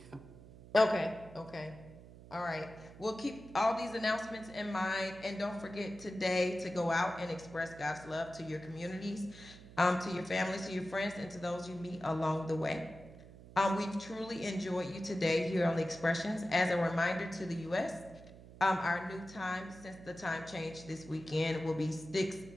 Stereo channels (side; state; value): right; noise; hum, 18 dB below the sound